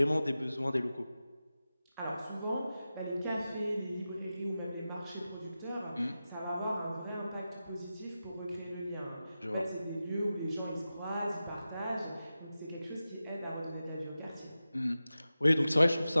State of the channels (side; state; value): both; inverted; correlation -0.93